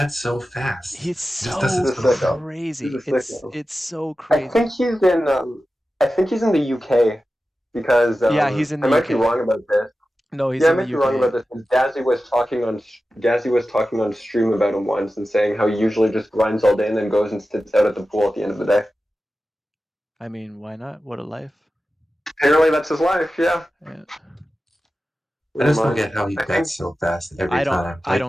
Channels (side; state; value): both; normal; correlation 0.94